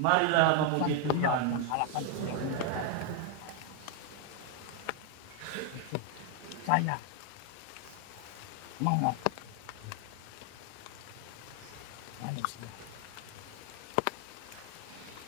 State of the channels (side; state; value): both; different; correlation 0.00